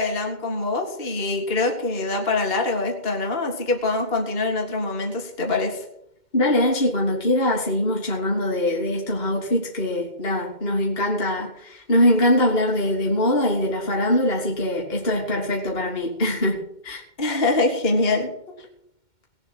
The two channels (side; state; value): right; late; 2.1 ms